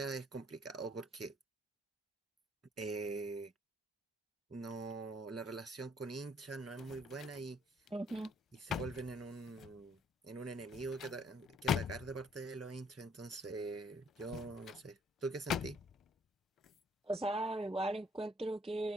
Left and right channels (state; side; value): normal; both; correlation 0.64